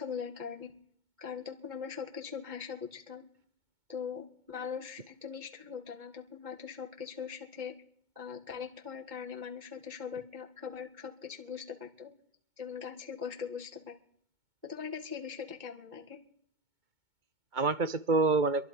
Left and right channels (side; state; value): left; late; 2.2 ms